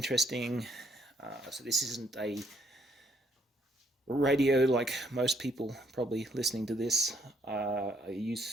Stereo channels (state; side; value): normal; both; correlation 0.70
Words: so this isn't a radio like most people probably listening to this are